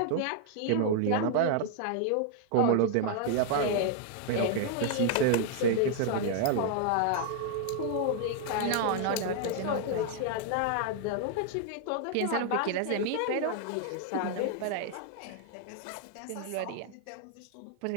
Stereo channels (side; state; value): both; different; correlation 0.00